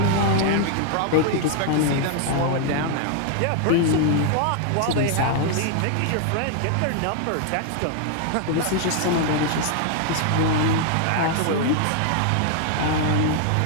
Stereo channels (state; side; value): different; both; correlation 0.00